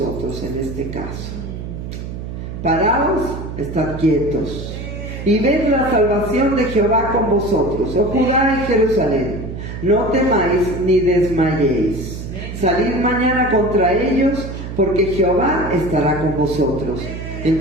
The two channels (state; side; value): noise; right; hum, 8 dB below the sound